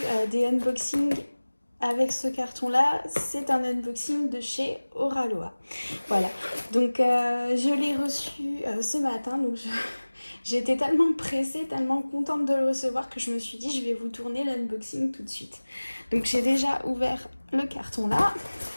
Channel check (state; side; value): inverted; both; correlation -1.00